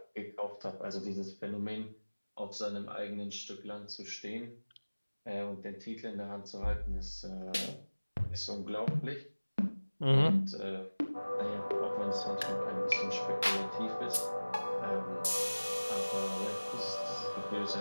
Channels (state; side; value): inverted; both; correlation -1.00